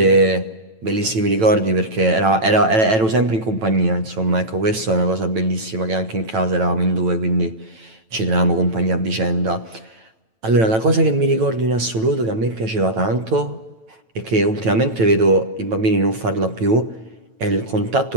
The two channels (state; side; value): late; left; 9.0 ms